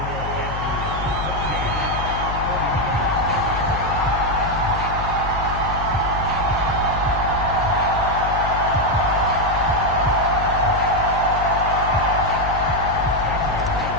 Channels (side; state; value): left; noise; hum, 6 dB below the sound